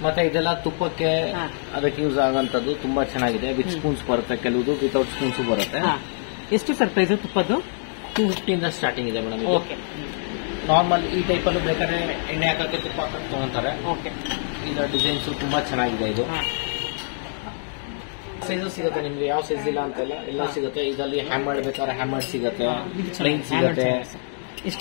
ಮತ್ತೆ ಇದೆಲ್ಲ ತುಪ್ಪಕ್ಕೆ ಅದಕ್ಕೆ ಯೂಸ್ ಆಗೋಂಥದ್ದು ತುಂಬಾ ಚೆನ್ನಾಗಿದೆ. ವಿತ್ ಸ್ಪೂನ್ಸ್ ಬರುತ್ತೆ, ಕೆಲವುದು ವಿತೌಟ್ ಸ್ಪೂನ್ಸ್ ಬರುತ್ತೆ. ಎಷ್ಟು ಸರ್ ಪ್ರೈಸ್ ತುಪ್ಪದ್ದು? 250 ಇಂದ ಸ್ಟಾರ್ಟಿಂಗ್ ಇದೆ ಮೇಡಮ್. ಇದು ನಾರ್ಮಲ್ ಈ ಟೈಪ್ ಅಲ್ಲೂ ಬೇಕಾದ್ರೆ ಎಣ್ಣೆ ಹಾಕಕ್ಕೆ ತುಪ್ಪ ಹಾಕಕ್ಕೆ ತಗೊಂತಾರೆ. ಇದರ ಡಿಸೈನ್ಸ್ ತುಂಬಾ ಚೆನ್ನಾಗಿದೆ. ಇದು ಸೈಜಸ್ ಸಿಗುತ್ತೆ ನಿಮ್ಗೆ, ಯಾವ ಸೈಜ್ ಇಲ್ಲ ಅಂತಲ್ಲ, ಎಲ್ಲ ಸಿಗುತ್ತೆ. ಇದರಲ್ಲಿ ಹ್ಯಾಮರ್ಡ್ ಬೇಕಾದ್ರೆ ಹ್ಯಾಮರ್ಡ್ ಸಿಗುತ್ತೆ, ಪ್ಲೈನ್ ಸಿಗುತ್ತೆ.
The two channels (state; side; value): silent; right; digital silence